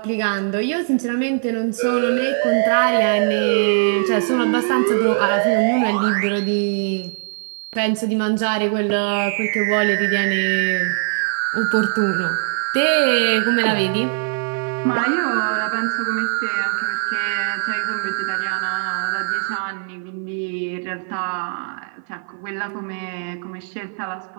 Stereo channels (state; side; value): silent; left; 55 dB below the other